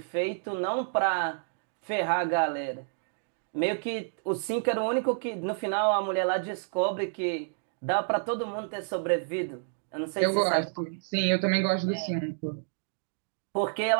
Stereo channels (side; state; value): left; silent; digital silence